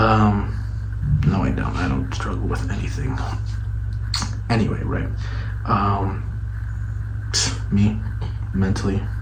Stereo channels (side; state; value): both; identical; correlation 1.00